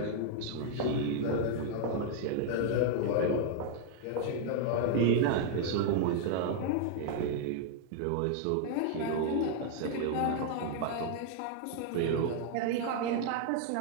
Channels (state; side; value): different; both; correlation 0.00